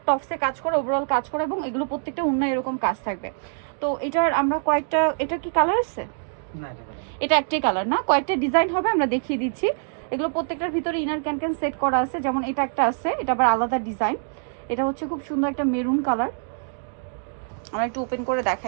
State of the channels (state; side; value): silent; left; digital silence